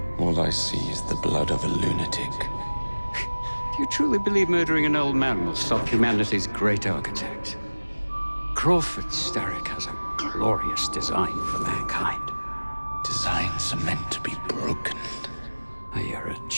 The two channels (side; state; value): both; inverted; correlation -1.00